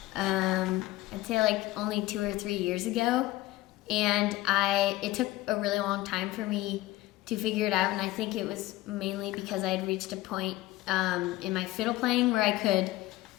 I'd say like only 2 or 3 years ago, and it took a really long time for me to figure it out, and I think it was mainly because I had reached a point in my fiddle playing where I could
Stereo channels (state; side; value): quieter; right; 17.5 dB